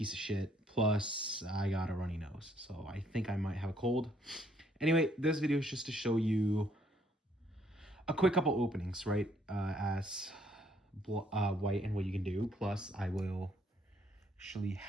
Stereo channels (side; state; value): both; normal; correlation 0.67